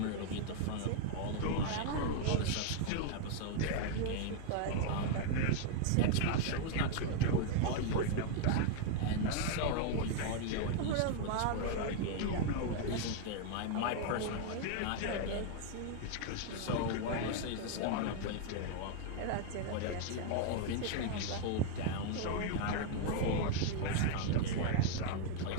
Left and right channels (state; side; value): different; both; correlation 0.00